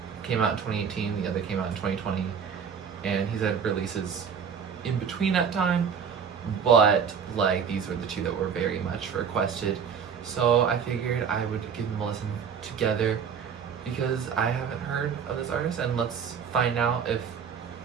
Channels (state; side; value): quieter; left; 7.0 dB